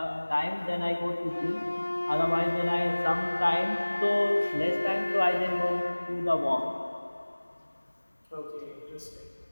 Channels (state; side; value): inverted; both; correlation -1.00